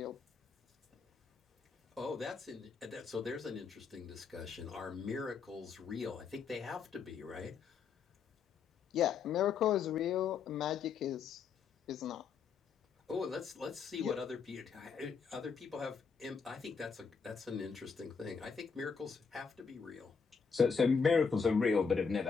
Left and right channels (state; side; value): quieter; right; 5.8 dB